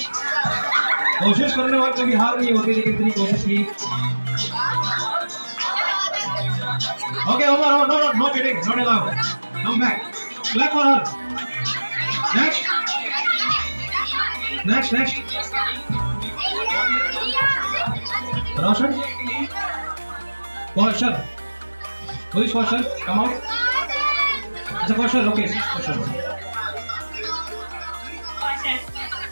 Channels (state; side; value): inverted; both; correlation -1.00